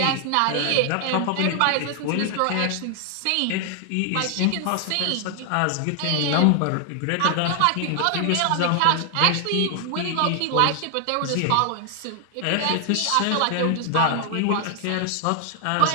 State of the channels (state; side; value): different; both; correlation 0.00